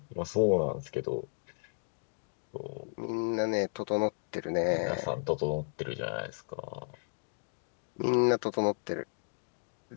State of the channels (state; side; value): silent; right; digital silence